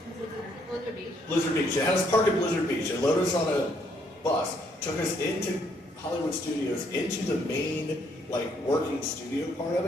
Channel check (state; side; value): normal; both; correlation 0.70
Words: Beach. Blizzard Beach. They had us park at Blizzard Beach and loaded us on a bus, took us into Hollywood Studios, into the main, working studio part of